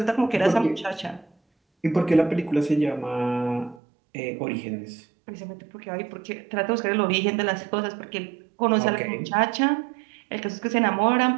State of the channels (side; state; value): left; drops out; at 3.8 s